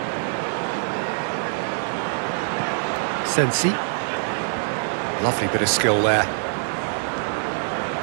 Sensi. Lovely bit of skill there.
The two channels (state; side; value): silent; left; 61 dB below the other